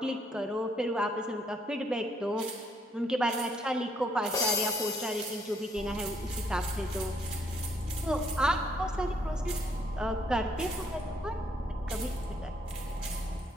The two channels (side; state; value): both; normal; correlation 0.70